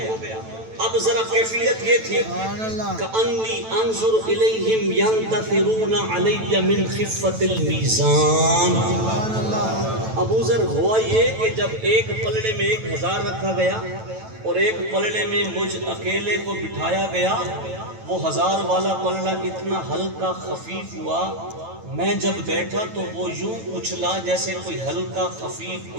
اب ذرا کیفیت یہ تھی کأنی انظر الیہم ینتفرون علی من خفت المیزان۔ ابو ذر ہوا یہ کہ جب ایک پلڑے میں 1000 رکھا گیا اور ایک پلڑے میں مجھ اکیلے کو بٹھایا گیا، وہ 1000 والا پلڑا اتنا ہلکا خفیف ہوا، میں جب بیٹھا تو وہ یوں اچھلا جیسے کوئی ہلکا خفیف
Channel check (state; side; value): late; left; 9.1 ms